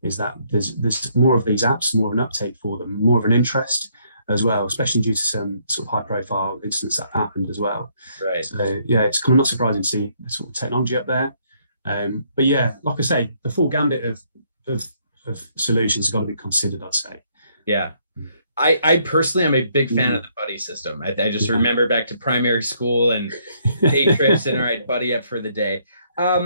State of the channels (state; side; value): inverted; both; correlation -0.69